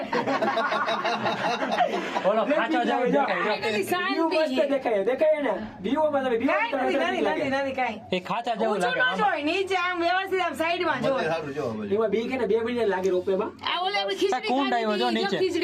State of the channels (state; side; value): identical; both; correlation 1.00